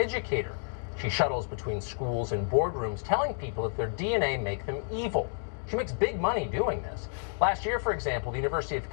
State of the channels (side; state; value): right; silent; digital silence